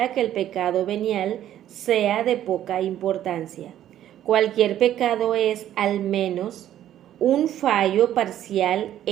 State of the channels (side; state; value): left; quieter; 11.8 dB